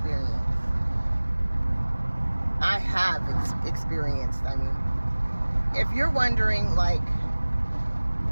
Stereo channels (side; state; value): both; inverted; correlation -1.00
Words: I have experienced, I mean. If you're wondering, like,